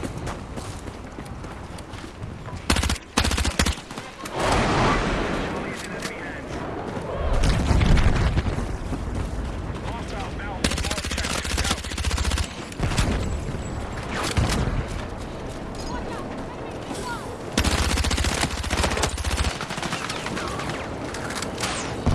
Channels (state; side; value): identical; both; correlation 1.00